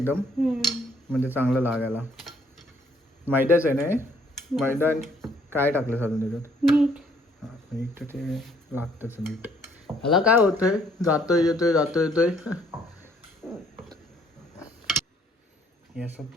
म्हणजे चांगलं लागायला. मैद्याच आहे ना हे, मैदा काय टाकलं साधून त्याच्यात, मीठ. हां मीठ तर ते लागतंच मीठ. ह्याला काय होतंय, जातोय येतोय जातोय येतोय. हे असं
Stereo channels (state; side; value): normal; both; correlation 0.64